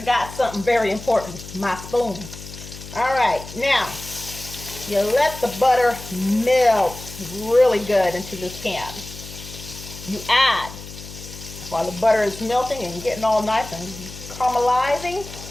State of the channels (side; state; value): left; noise; hum, 14 dB below the sound